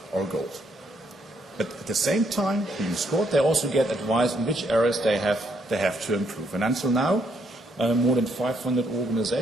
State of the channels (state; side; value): normal; both; correlation 0.73